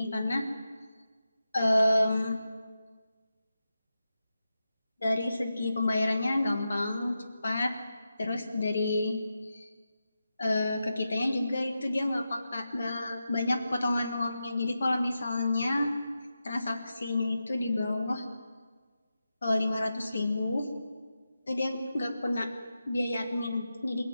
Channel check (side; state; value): both; inverted; correlation -0.90